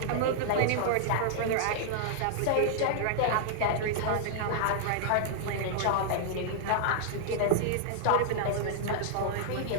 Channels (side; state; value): both; different; correlation -0.01